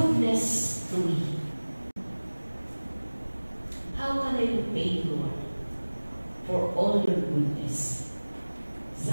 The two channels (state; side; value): inverted; both; correlation -1.00